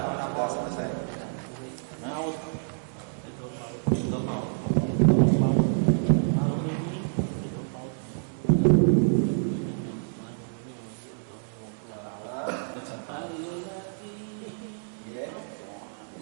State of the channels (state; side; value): silent; left; digital silence